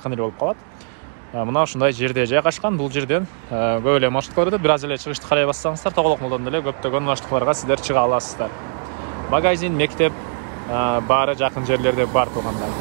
эле болуп калат. Мына ушундай жерде жайгашкан. Бул жерден көп эле маршруткаларды бир аз эле чыгышты карай бассаңыздар Тоголок молдон деле көптөгөн маршруткаларга сиздер чыга аласыздар. Магазин, мектеп баары жакын жерлерде бар туғандар.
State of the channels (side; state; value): left; silent; digital silence